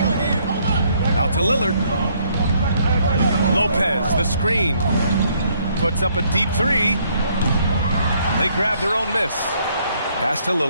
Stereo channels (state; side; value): inverted; both; correlation -0.68